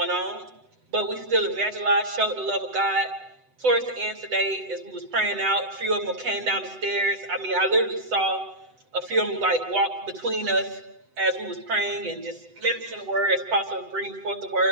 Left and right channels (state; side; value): late; left; 7.9 ms